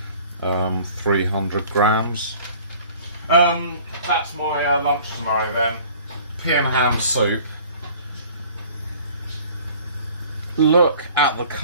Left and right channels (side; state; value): both; inverted; correlation -0.49